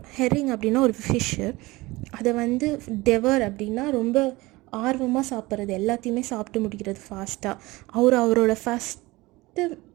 ஹெரிங் அப்படின்னா ஒரு ஃபிஷ்ஷு, அதை வந்து டெவர் அப்படின்னா ரொம்ப ஆர்வமாக சாப்பிட்றது, எல்லாத்தையுமே சாப்பிட்டு முடிக்கிறது ஃபாஸ்ட்டாக. அவரோட ஃபஸ்ட்டு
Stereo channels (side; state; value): left; quieter; 21.2 dB